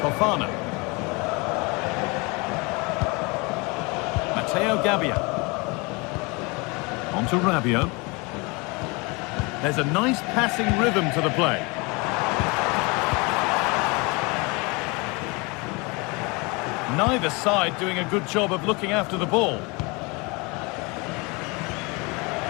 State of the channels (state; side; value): quieter; right; 27.7 dB